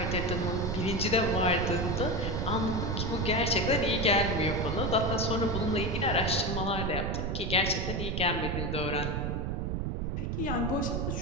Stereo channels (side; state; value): right; noise; rumble, 1 dB below the sound